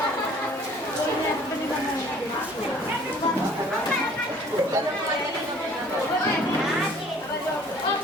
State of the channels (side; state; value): both; normal; correlation 0.54